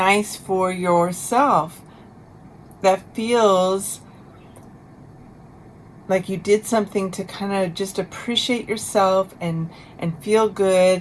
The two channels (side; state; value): both; identical; correlation 1.00